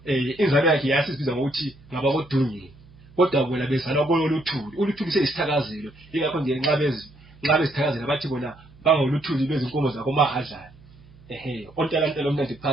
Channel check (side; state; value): right; noise; hum, 24 dB below the sound